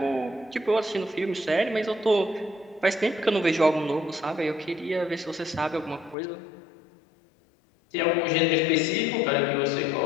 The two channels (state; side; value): drops out; right; at 6.2 s